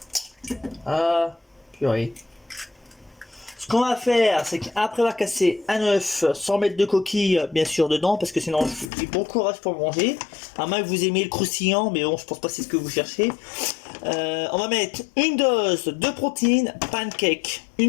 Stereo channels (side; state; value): right; drops out; at 8.9 s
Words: Ah, purée. Ce qu'on va faire, c'est qu'après avoir cassé un œuf, sans mettre de coquille, bien sûr, dedans, parce que sinon, j'ai bon courage pour manger. À moins que vous aimiez le croustillant, mais bon, je pense pas que c'est ce que vous cherchez. On va mettre une dose de protéines pancake.